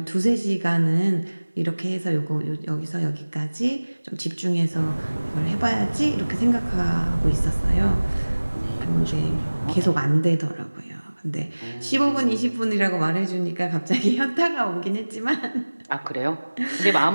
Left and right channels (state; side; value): inverted; both; correlation -1.00